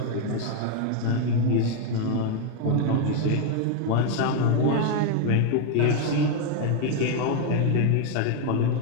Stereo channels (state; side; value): different; both; correlation 0.01